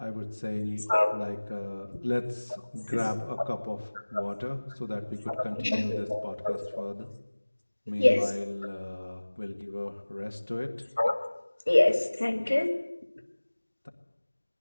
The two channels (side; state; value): both; inverted; correlation -1.00